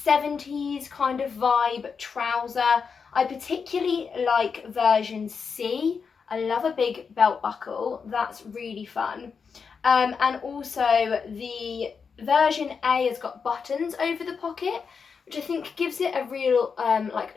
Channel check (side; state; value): right; quieter; 5.8 dB